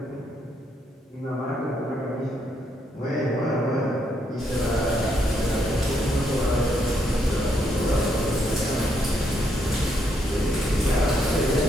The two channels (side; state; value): both; normal; correlation 0.75